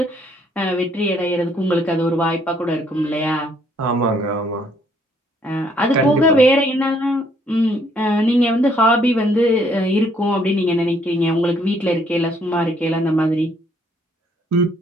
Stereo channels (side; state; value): both; normal; correlation 0.66